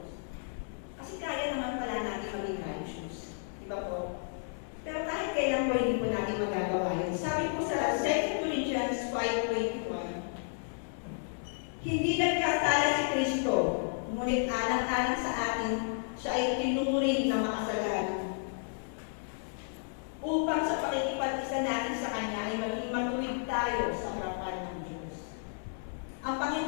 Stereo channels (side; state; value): right; silent; 56 dB below the other